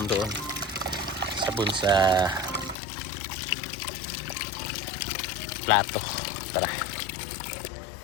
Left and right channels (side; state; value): right; drops out; at 2.8 s